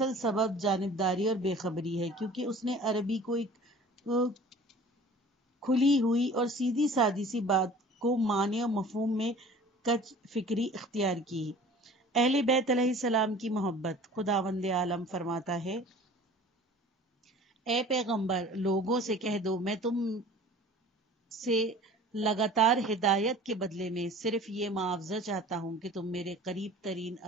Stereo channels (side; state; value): both; normal; correlation 0.45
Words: سبب جانبداری اور بے خبری ہے، کیونکہ اس نے عربی کو ایک کھلی ہوئی اور سیدھی سادی سی بات کو معنی اور مفہوم میں کج فکری اختیار کی۔ اہل بیت علیہ السلام کی محبت۔ خداوند عالم فرماتا ہے، اے پیغمبر، لوگوں سے کہہ دو میں تم سے لگاتار ہدایت کے بدلے میں صرف یہ معاوضہ چاہتا ہوں کہ تم میرے قریب ترین